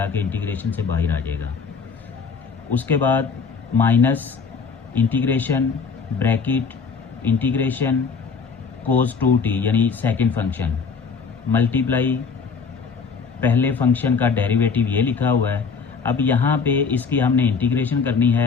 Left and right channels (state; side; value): quieter; right; 5.4 dB